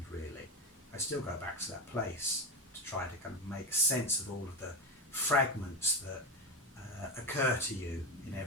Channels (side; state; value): both; normal; correlation 0.16